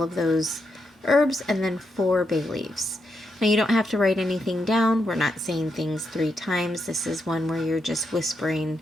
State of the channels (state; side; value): normal; both; correlation 0.83